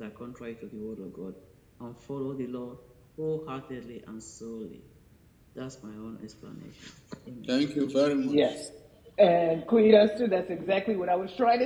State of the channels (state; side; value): identical; both; correlation 1.00